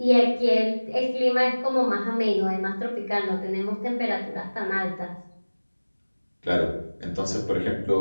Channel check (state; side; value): inverted; both; correlation -1.00